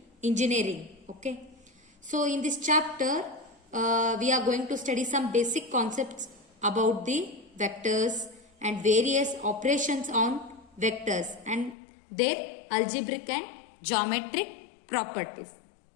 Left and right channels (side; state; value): right; drops out; at 11.8 s